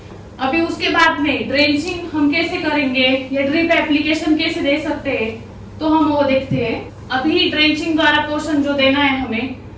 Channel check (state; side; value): identical; both; correlation 1.00